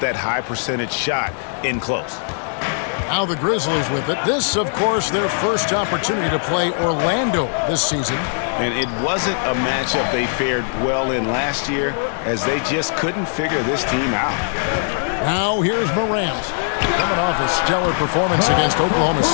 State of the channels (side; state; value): right; silent; digital silence